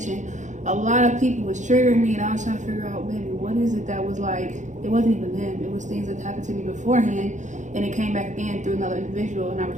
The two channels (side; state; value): left; late; 0.35 ms